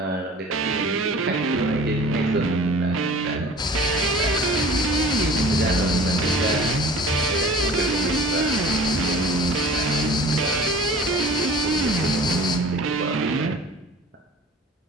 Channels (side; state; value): both; normal; correlation 0.44